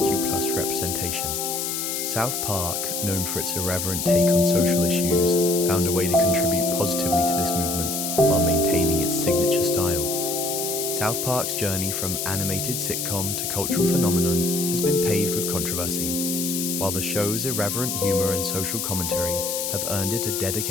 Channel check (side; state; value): left; noise; hiss, 2 dB below the sound